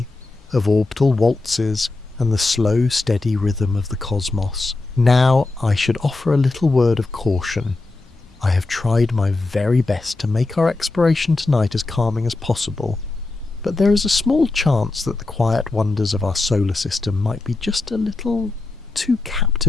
of orbital waltzes, and the slow, steady rhythm of the cosmos. Now, I should offer a little word of caution. I have tried my very best to make our exploration tonight as calming as possible, but there is a small chance that the quiet wonders of our solar system might be just a little too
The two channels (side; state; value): right; quieter; 3.3 dB